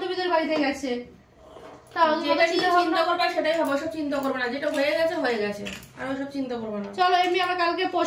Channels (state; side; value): identical; both; correlation 1.00